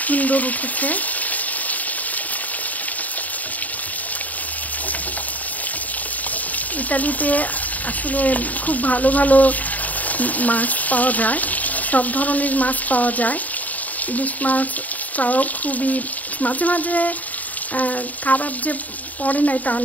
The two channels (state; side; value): late; right; 0.075 ms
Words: সুন্দর উঠেছে। ইতালিতে আসলে খুব ভালো ভালো মাছ পাওয়া যায়, সব ধরনের মাছ পাওয়া যায়। ইলিশ মাছটাও খুবই মাঝে মাঝে খারাপ যে পড়ে নাই তা